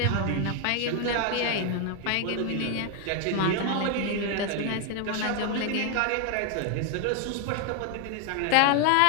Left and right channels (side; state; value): both; different; correlation 0.01